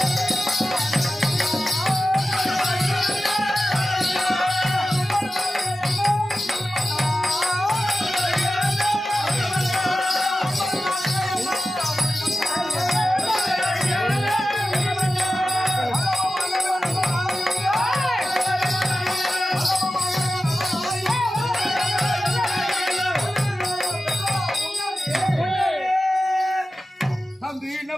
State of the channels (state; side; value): normal; both; correlation 0.94